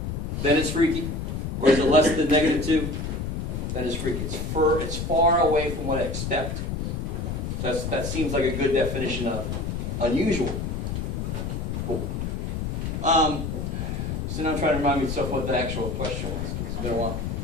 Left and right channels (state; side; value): noise; left; rumble, 3 dB below the sound